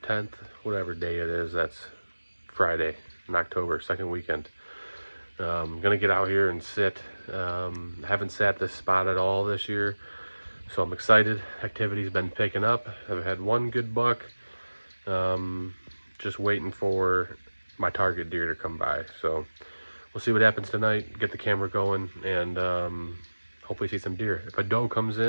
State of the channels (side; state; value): both; inverted; correlation -1.00